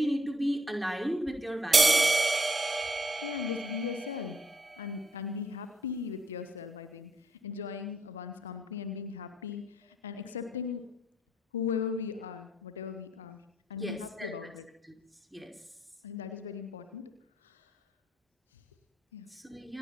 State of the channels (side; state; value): both; normal; correlation 0.72